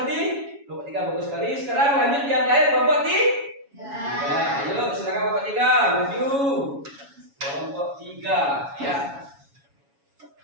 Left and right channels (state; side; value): late; left; 7.2 ms